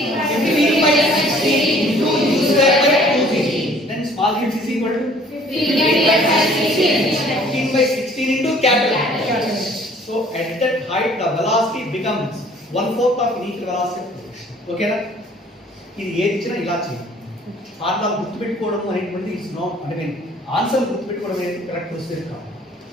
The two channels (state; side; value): normal; both; correlation 0.55